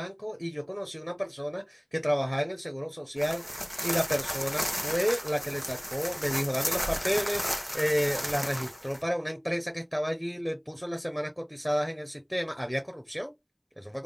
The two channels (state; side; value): identical; both; correlation 1.00